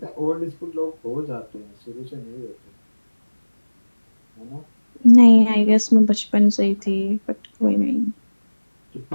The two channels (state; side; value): inverted; both; correlation -1.00